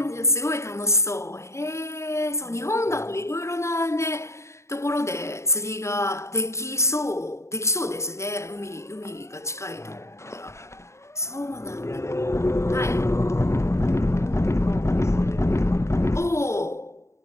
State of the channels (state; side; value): late; right; 0.14 ms